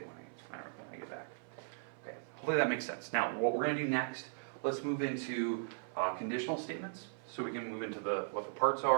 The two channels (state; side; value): silent; left; 53 dB below the other